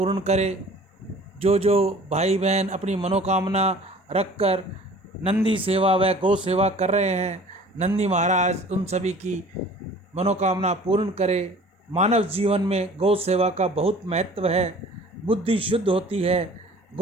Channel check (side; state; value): both; normal; correlation 0.48